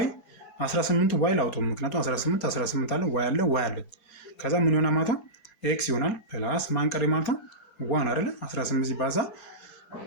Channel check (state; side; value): late; right; 3.5 ms